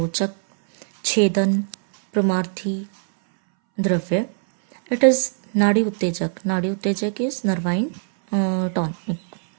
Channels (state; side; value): silent; left; 62 dB below the other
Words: chedan, pramarthi dravya. It is nadi uttejak. Nadi uttejak is nervine tonic,